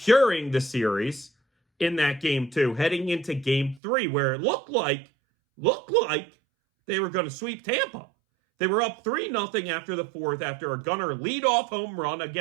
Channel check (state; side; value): drops out; left; at 3.8 s